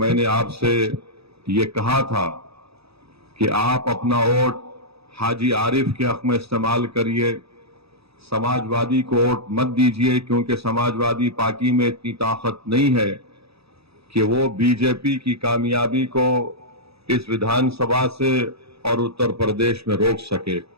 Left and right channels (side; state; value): left; late; 0.78 ms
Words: आपसे ये कहा था कि आप अपना वोट हाजी आरिफ के हक में इस्तेमाल करिए, समाजवादी को वोट मत दीजिए, क्योंकि समाजवादी पार्टी में इतनी ताकत नहीं है कि वो बीजेपी की कामयाबी को इस विधानसभा से और उत्तर प्रदेश में रोक सके।